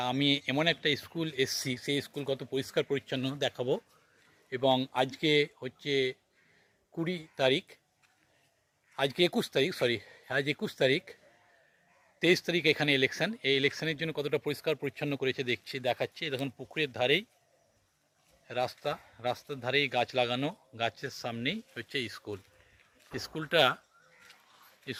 আমি এমন একটা স্কুল এসছি, সেই স্কুল কত পরিষ্কার পরিচ্ছন্ন দেখাবো। এবং আজকে হচ্ছে 20 তারিখ, আজকে 21 তারিখ, আজ 21 তারিখ, 23 তারিখ এখানে ইলেকশন। এই ইলেকশনের জন্য কতটা পরিষ্কার পরিচ্ছন্ন করেছে দেখাচ্ছি। দেখুন পুকুরের ধারেই রাস্তার ধারেই গাছ লাগানো, গাছের সামনেই হচ্ছে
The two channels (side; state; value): both; identical; correlation 1.00